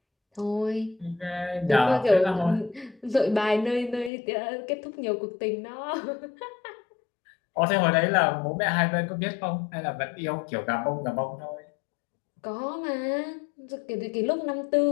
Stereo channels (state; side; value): drops out; right; at 4.1 s